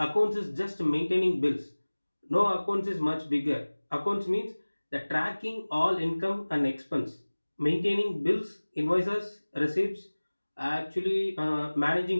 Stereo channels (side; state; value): both; inverted; correlation -1.00